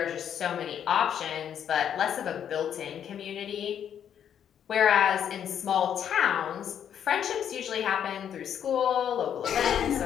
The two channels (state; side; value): quieter; right; 9.1 dB